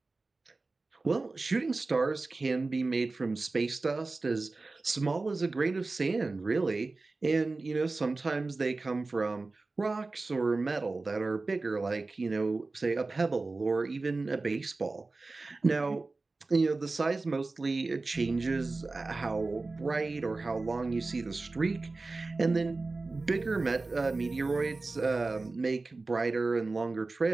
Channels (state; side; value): quieter; left; 3.5 dB